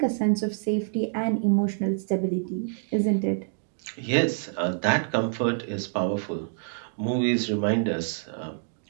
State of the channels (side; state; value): left; silent; digital silence